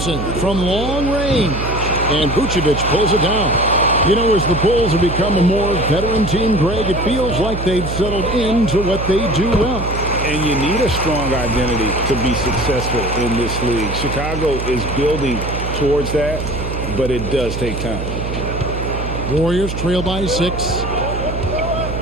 from long range. And Vucevic pulls it down. You know, as the Bulls have become a more veteran team, Greg, it feels like they've settled into what they do well. And you need a strong identity to be successful in this league. Chicago is building towards that, but it does take time. Warriors trail by 6.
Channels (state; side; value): noise; right; hum, 5 dB below the sound